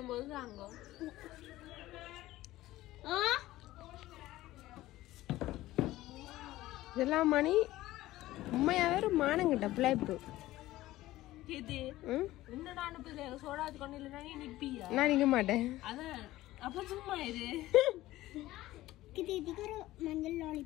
போது தாங்கோ. இதெல்லாம் மணி உண்மையாவே ஒரு மானங்கிட்ட பிள்ளைப்பு. இது என்னடா அனுப்புது சோடா வச்சு கொண்டு இல்லைன்னா நீ நிப்பியா? நான் நிக்க மாட்டேன். அதான் அப்ப சும்மா இது இதுக்கு ஒரு மஞ்சள்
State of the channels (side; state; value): right; quieter; 16.4 dB